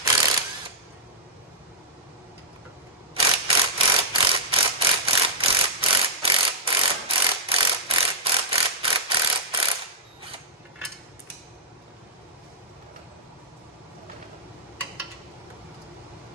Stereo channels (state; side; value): normal; both; correlation -0.11